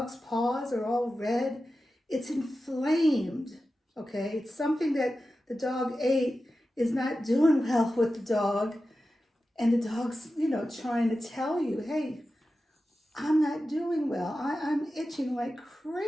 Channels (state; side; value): normal; both; correlation 0.93